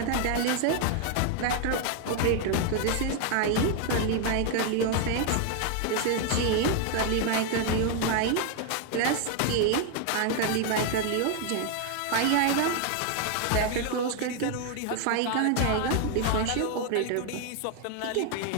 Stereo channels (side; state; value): both; different; correlation 0.00